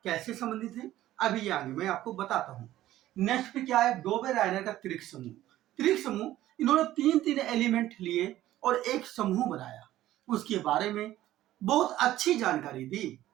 कैसे संबंधित है अभी ये आगे मैं आपको बताता हूँ। नेक्स्ट पे क्या है, डोबेराइनर का त्रिक समूह। त्रिक समूह इन्होंने तीन तीन एलिमेंट लिए और एक समूह बनाया, उसके बारे में बहुत अच्छी जानकारी दी,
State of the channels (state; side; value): quieter; left; 14.2 dB